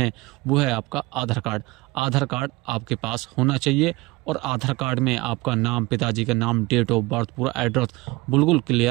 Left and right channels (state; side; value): quieter; left; 22.2 dB